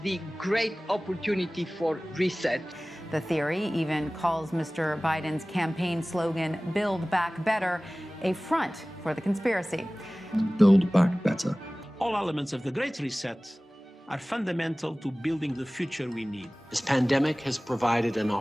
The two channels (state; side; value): normal; both; correlation 0.98